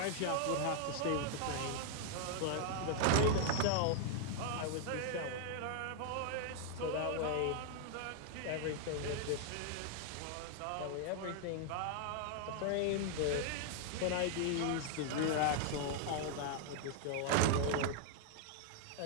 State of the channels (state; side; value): different; both; correlation 0.00